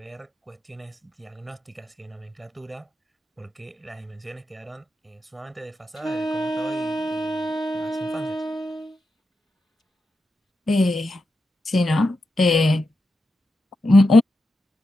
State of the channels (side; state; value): both; normal; correlation 0.88